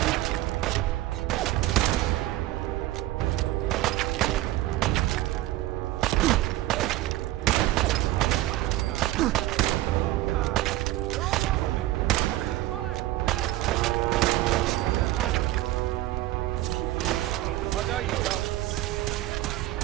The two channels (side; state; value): left; quieter; 16.1 dB